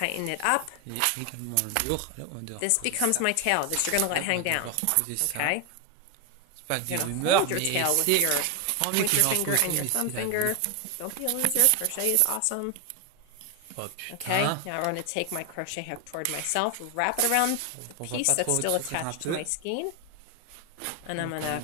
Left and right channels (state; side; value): different; both; correlation 0.01